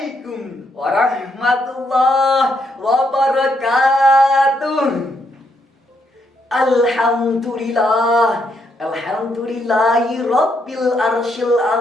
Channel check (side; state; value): both; normal; correlation 0.76